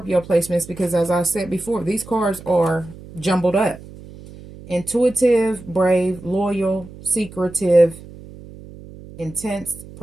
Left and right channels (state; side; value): noise; right; hum, 17 dB below the sound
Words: placements, because as I said before, these cards are jumbled up. Intuitive, brave, loyal, secretive, intense,